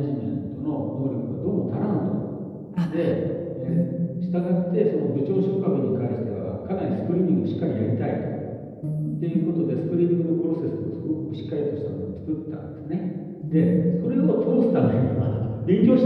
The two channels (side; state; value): both; identical; correlation 1.00